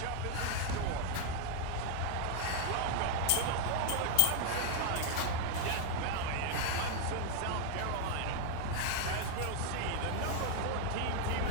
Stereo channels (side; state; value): both; different; correlation 0.00